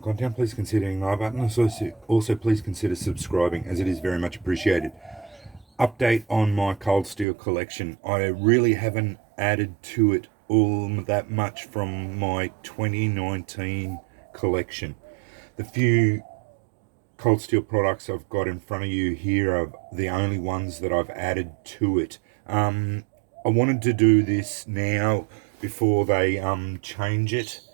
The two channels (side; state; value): left; drops out; at 7.2 s